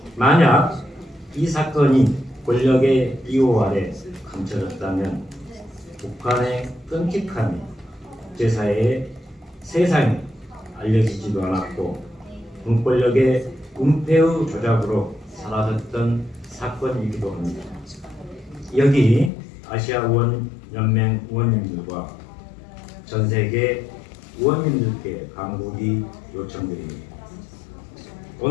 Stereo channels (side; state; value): right; drops out; at 19.3 s